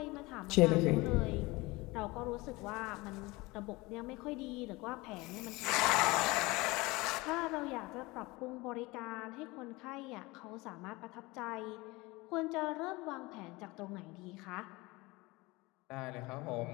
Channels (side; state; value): right; quieter; 22.7 dB